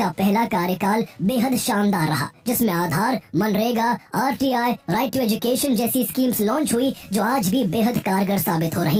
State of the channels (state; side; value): identical; both; correlation 1.00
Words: पहला कार्यकाल बेहद शानदार रहा, जिसमें आधार, मनरेगा, आरटीआई, राइट टू एजुकेशन जैसी स्कीम्स लॉन्च हुई जो आज भी बेहद कारगर साबित हो